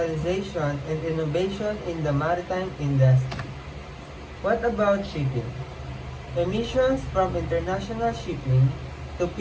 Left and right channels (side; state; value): both; identical; correlation 1.00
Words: and innovation in the maritime industry. What about shipping? Emissions from international shipping to